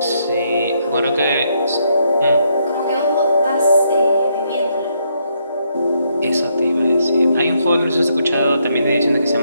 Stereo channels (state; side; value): inverted; both; correlation -0.75